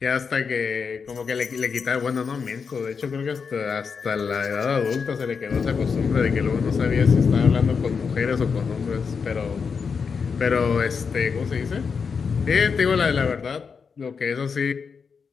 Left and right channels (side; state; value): right; quieter; 5.7 dB